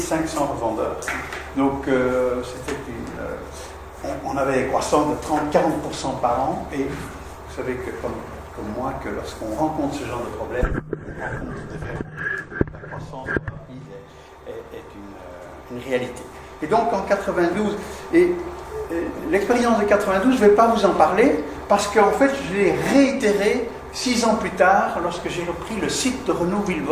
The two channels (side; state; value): both; identical; correlation 1.00